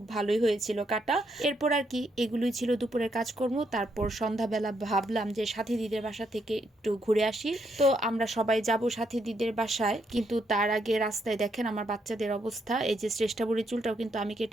ভালোই হয়েছিল কাটা। এরপর আর কি এগুলোই ছিল দুপুরের কাজকর্ম। তারপর সন্ধ্যাবেলা ভাবলাম যে সাথী দিদির বাসা থেকে একটু ঘুরে আসি। তো আমরা সবাই যাব সাথী দিদির বাসায়, কিন্তু তার আগে রাস্তায় দেখেন আমার বাচ্চাদের অবস্থা। এই যে শ্রেষ্ঠা বুড়ির চুলটাও কিন্তু আমি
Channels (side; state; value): both; normal; correlation 0.76